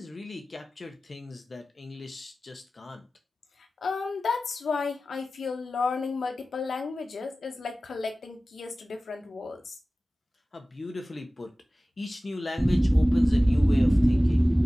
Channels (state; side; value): normal; both; correlation 0.97